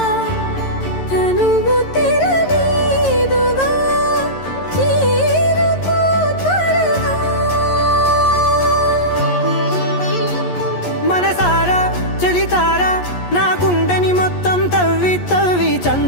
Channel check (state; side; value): late; right; 11 ms